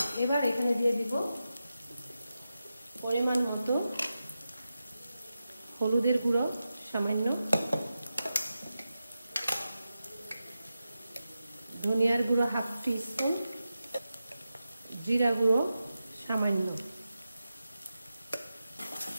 এবার এখানে দিয়ে দিব পরিমাণ মতো হলুদের গুঁড়ো সামান্য, ধনিয়ার গুঁড়ো 1/2 টিস্পুন, জিরা গুঁড়ো সামান্য,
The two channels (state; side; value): inverted; both; correlation -0.91